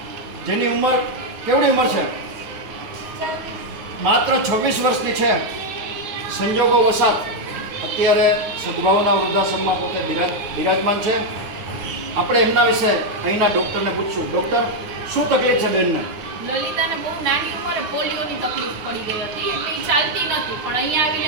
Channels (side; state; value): left; late; 9.5 ms